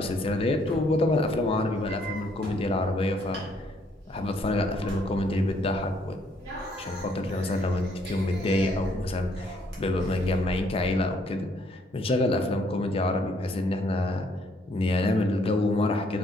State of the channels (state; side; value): normal; both; correlation 0.67